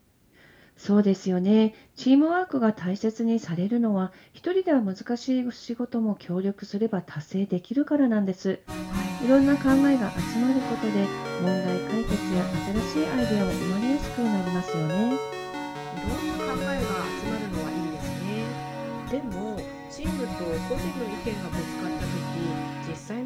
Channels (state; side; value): identical; both; correlation 1.00